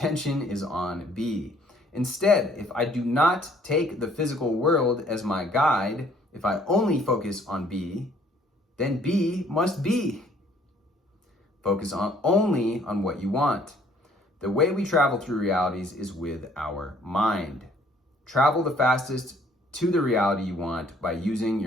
is on B. Instead, if I do not take the physical world as my guide, if I only focus on B, then B must be. Focus only on what you want. The way we travel through realities is with our mind. Travel the fastest to the reality you want by using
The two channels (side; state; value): both; normal; correlation 0.61